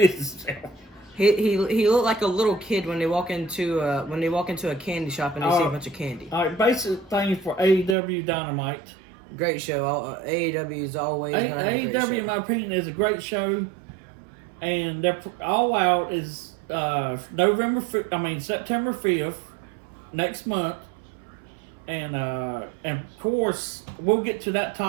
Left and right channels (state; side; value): drops out; left; at 8.0 s